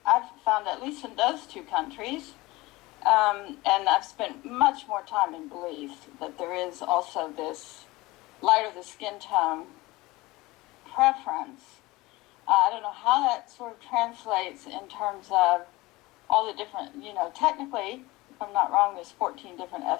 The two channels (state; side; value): quieter; right; 20.8 dB